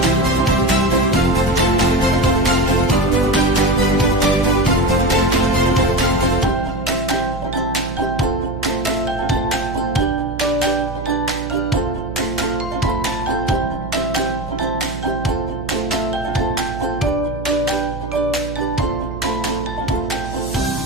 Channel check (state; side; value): noise; right; hum, 9 dB below the sound